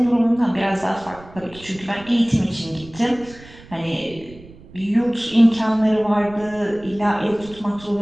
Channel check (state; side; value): noise; right; rumble, 20 dB below the sound